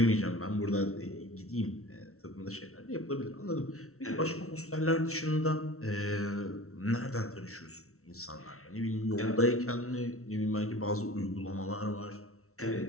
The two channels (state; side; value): late; right; 0.63 ms